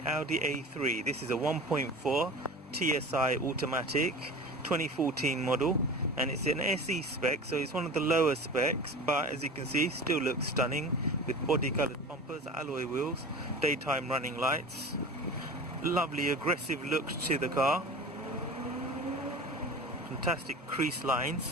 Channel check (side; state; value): both; normal; correlation 0.35